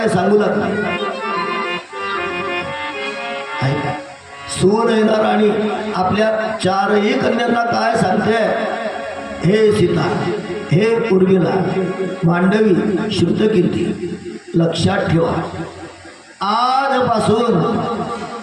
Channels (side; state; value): both; identical; correlation 1.00